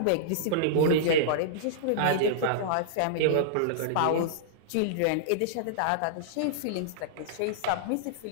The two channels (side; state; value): both; different; correlation -0.02